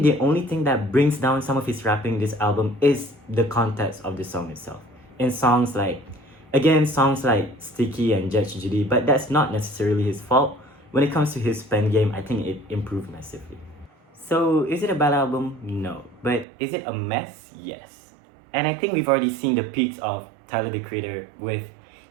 the only thing that brings down some of his rapping this album is the context of the song itself. In songs like, again, songs like Sticky and Judge Judy, but that's not necessarily his fault. When it comes to his pen game, I think it improved massively. So, is it a bad album? No. But is it a mess? Yes. And I think we've already seen the peaks of Tyler the Creator with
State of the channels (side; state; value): left; drops out; at 16.4 s